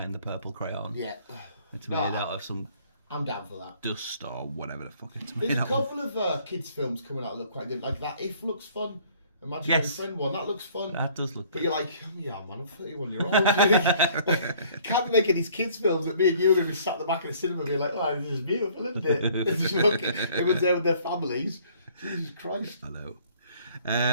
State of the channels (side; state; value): both; inverted; correlation -0.57